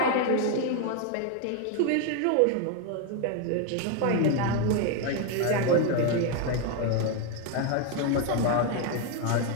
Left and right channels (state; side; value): different; both; correlation 0.01